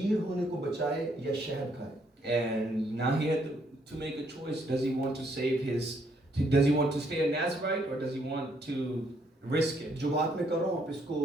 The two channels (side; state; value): both; normal; correlation 0.70